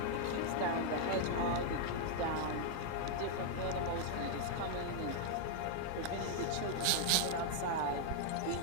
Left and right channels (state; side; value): different; both; correlation 0.00